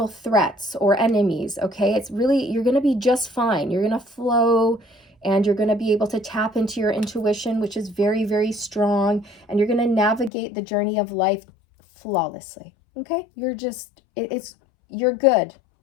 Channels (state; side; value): drops out; right; at 10.3 s